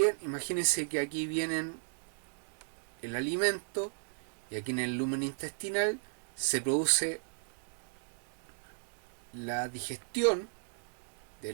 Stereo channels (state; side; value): silent; left; digital silence